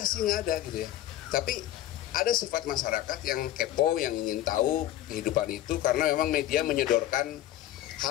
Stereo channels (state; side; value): quieter; right; 13.3 dB